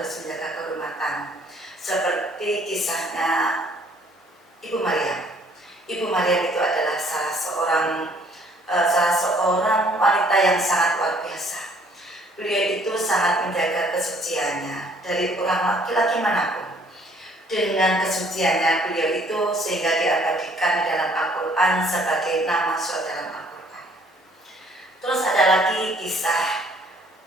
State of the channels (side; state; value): both; normal; correlation 0.60